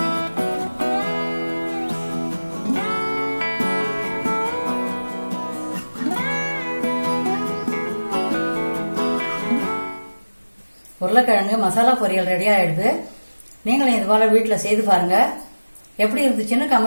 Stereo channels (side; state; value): both; inverted; correlation -1.00